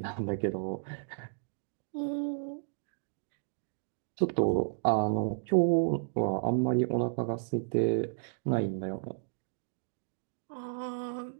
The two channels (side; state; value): left; silent; digital silence